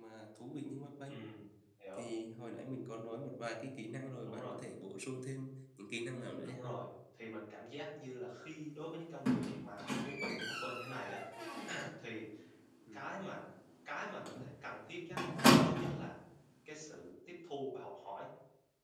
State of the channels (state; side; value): identical; both; correlation 1.00